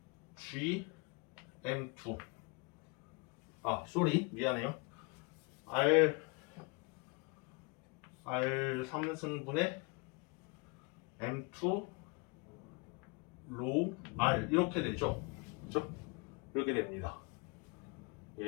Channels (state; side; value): quieter; right; 30.3 dB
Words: G M2 미안해요. R 3승분의 M2 로우 R 이렇게 되죠. 그렇죠? 이렇게 됩니다.